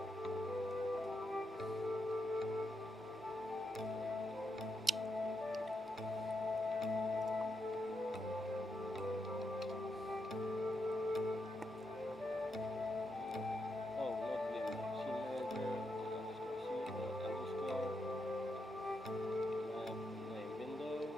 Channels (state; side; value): normal; both; correlation 0.83